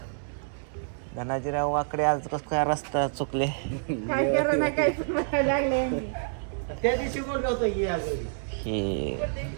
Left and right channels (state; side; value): silent; left; 59 dB below the other